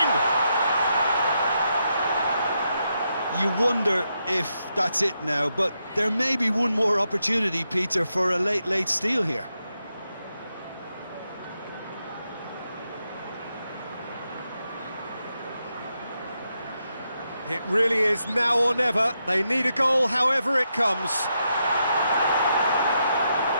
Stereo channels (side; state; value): both; inverted; correlation -0.83